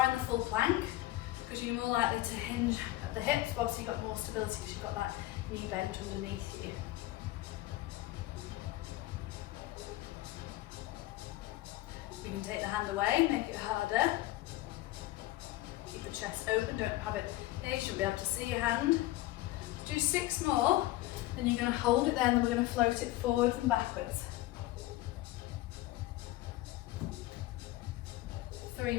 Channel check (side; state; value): right; quieter; 16.9 dB